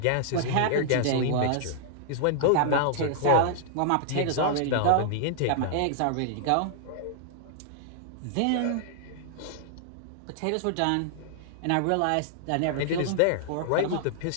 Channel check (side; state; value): both; different; correlation -0.01